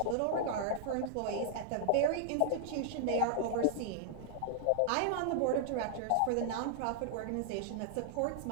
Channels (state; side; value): different; both; correlation -0.01